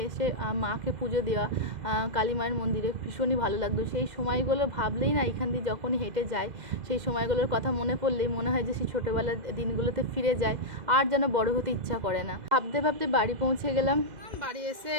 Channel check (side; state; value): left; late; 2.0 ms